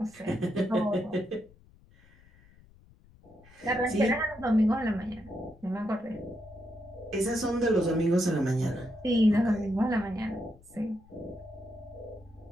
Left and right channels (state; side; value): noise; left; rumble, 27 dB below the sound